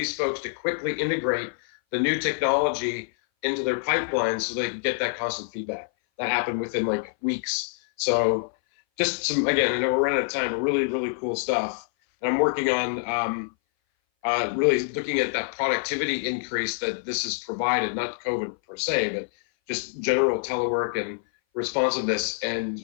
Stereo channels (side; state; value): right; silent; 58 dB below the other